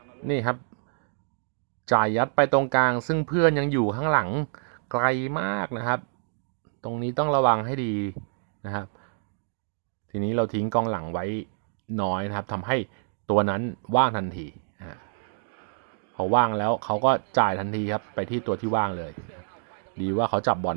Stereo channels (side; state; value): left; silent; digital silence